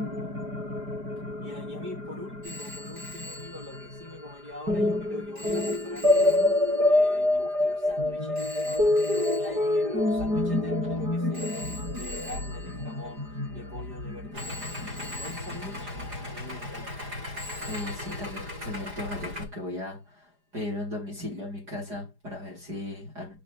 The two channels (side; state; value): left; late; 4.9 ms